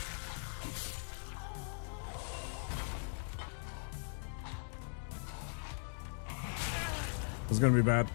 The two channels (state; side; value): silent; right; digital silence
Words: This is gonna be bad.